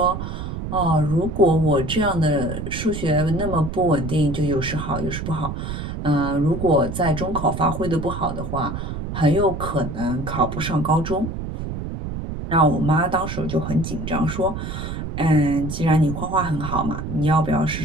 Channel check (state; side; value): noise; right; rumble, 6 dB below the sound